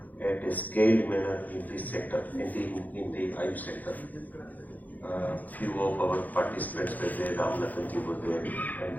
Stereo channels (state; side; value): late; right; 0.081 ms